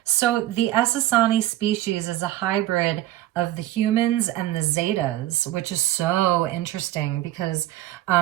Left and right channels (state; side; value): quieter; left; 14.6 dB